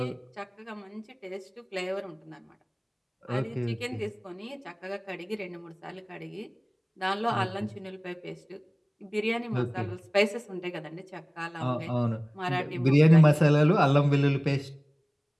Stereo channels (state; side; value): identical; both; correlation 1.00